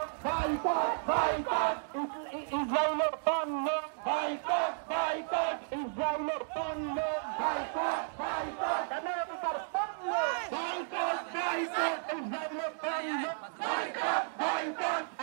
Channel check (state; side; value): silent; left; digital silence